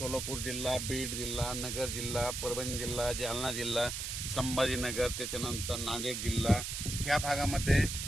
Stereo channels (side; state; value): right; noise; hiss, 4 dB below the sound